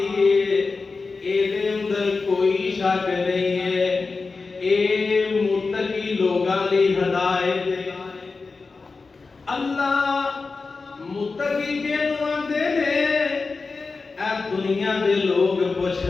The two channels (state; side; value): quieter; right; 4.2 dB